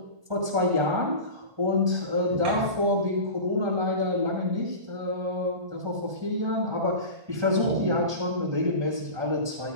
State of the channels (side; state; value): left; late; 1.3 ms